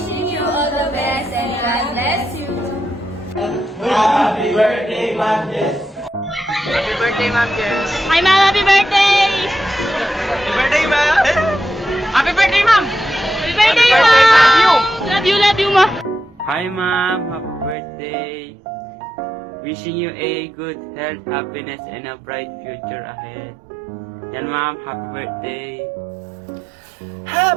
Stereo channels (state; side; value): drops out; left; at 17.8 s